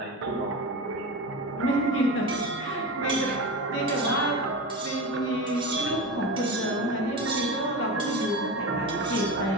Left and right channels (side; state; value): both; normal; correlation 0.25